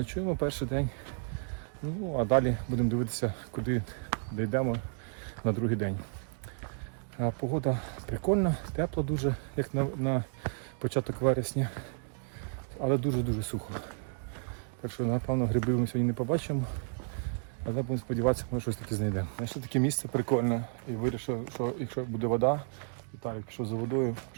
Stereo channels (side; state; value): left; silent; 56 dB below the other